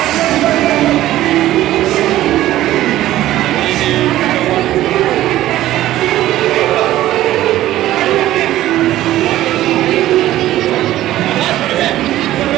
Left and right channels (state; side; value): quieter; left; 14.5 dB